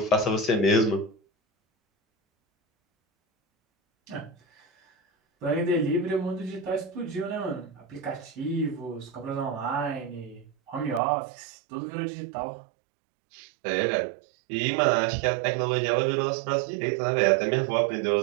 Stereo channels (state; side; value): drops out; left; at 11.0 s